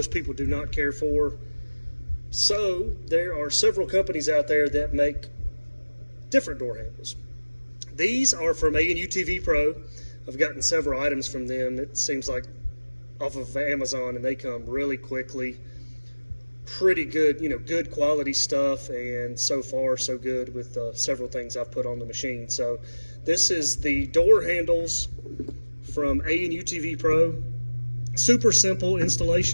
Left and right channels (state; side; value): inverted; both; correlation -1.00